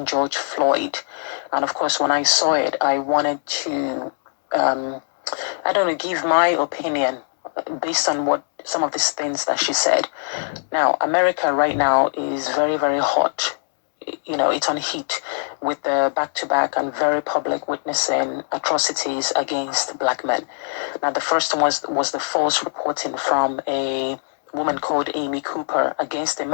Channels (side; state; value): right; silent; digital silence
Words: George Floyd. And of course, when I saw it, I wanted to, I don't know, give my opinion based on what some of these things that she said. Now, America right now is very, very hot. It's on heat with the back-to-back and very public witnessing atrocities against black men. Now, the first one was the false reporting from a woman called Amy Cooper against a